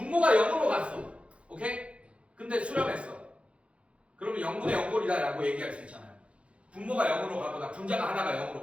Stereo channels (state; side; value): late; left; 0.061 ms